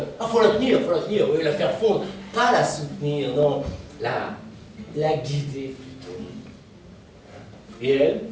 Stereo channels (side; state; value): both; identical; correlation 1.00